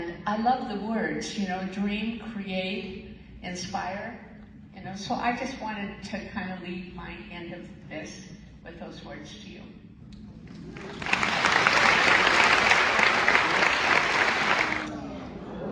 I love the words, you know, dream, create, inspire, you know, so I just wanted to kind of leave my end of this with those words to you.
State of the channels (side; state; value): both; identical; correlation 1.00